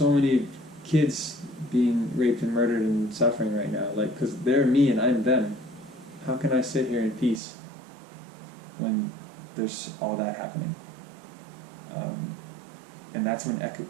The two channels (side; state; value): left; drops out; at 7.4 s